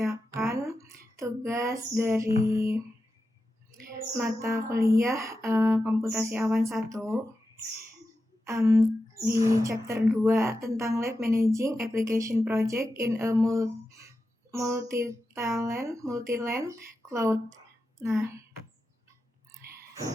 tugas dari mata kuliah Komputasi Awan 1 di chapter 2 tentang Lab Managing Application Project in a Multi-Land Cloud. Nah,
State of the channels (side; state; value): both; normal; correlation 0.91